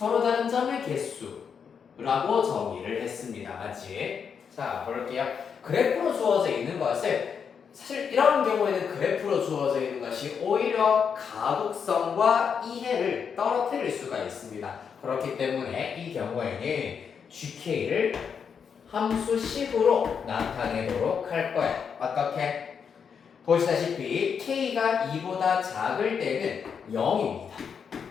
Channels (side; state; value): right; quieter; 6.8 dB